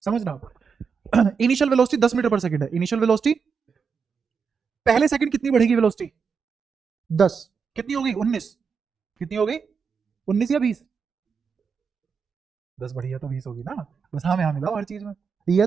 समझना आप। इनिशियल वेलोसिटी 10 मीटर पर सेकंड है। इनिशियल वेलोसिटी पहले सेकंड कितनी बढ़ेगी वेलोसिटी? 10। कितनी होगी? 19। कितनी हो गई? 19 या 20? 10 बढ़ी है तो 20 होगी ना। बस हाँ में हाँ मिलाओ हर चीज में, ये है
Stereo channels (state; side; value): quieter; left; 5.9 dB